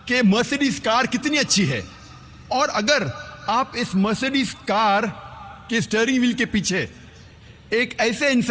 کہ مرسیڈیز کار کتنی اچھی ہے، اور اگر آپ اس مرسیڈیز کار کے اسٹیئرنگ وہیل کے پیچھے ایک ایسے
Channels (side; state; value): both; identical; correlation 1.00